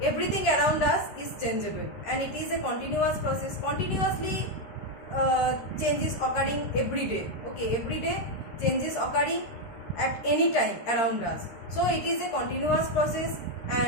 everything around us is changeable and it is a continuous process. Continuously change is occurring every day. Okay, every day change is occurring at any time around us. So it is a continuous process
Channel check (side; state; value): right; late; 13 ms